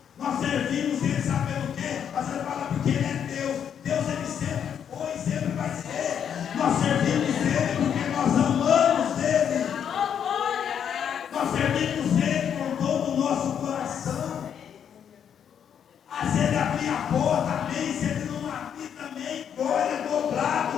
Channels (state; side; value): quieter; right; 8.4 dB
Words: Nós servimos Ele, sabe pelo quê? Mas Ele fala porque Ele é Deus. Deus, Ele sempre foi, sempre vai ser. Nós servimos Ele porque nós amamos Ele. Nós servimos Ele com todo o nosso coração. Se Ele abrir a porta, amém. Se Ele não abrir também, glória